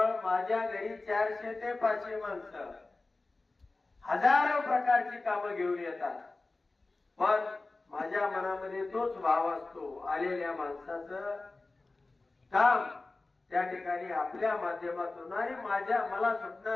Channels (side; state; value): right; quieter; 3.3 dB